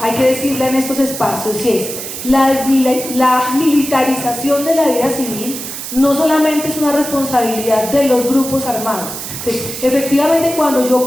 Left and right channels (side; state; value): right; noise; hiss, 8 dB below the sound